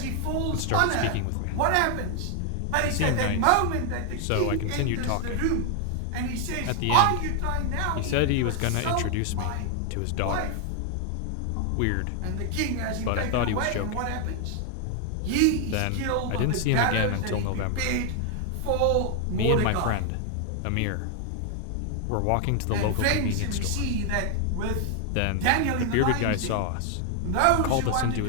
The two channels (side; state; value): both; different; correlation 0.00